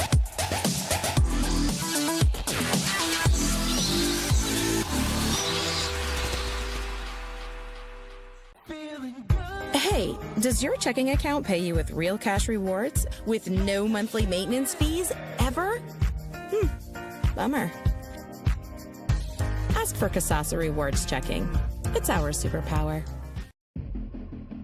Hey, does your checking account pay you with real cash rewards with no monthly maintenance fees ever? Bummer. Ask for Kasasa Rewards Checking. It's our superpower.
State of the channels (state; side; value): identical; both; correlation 1.00